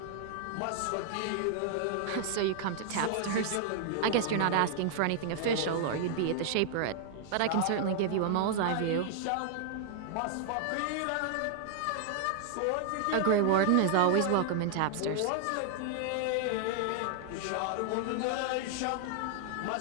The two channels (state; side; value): different; both; correlation 0.00